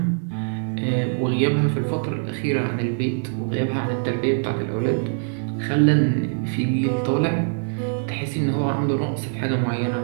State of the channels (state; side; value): silent; left; digital silence